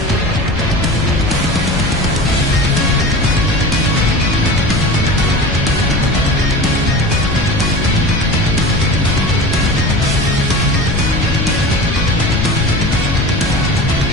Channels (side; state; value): left; noise; rumble, 5 dB below the sound